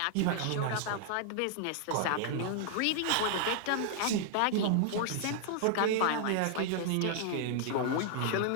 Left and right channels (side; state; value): both; different; correlation -0.01